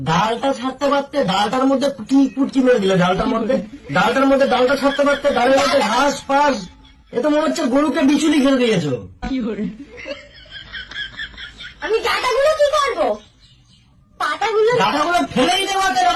ডালটা ছাড়তে পারতে, ডালটার মধ্যে কি পুটকি মেরে দিলে? ডালটার মধ্যে ডালটা ছাড়তে পারতে, ডালের মধ্যে ঘাস ফাস। এ তো মনে হচ্ছে গরুকে বিচুলি খেলে দিয়েছো। আমি ডাটাগুলো কি করবো? পাতাগুলো ডাটাগুলো ফেলেই দেওয়া,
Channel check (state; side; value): identical; both; correlation 1.00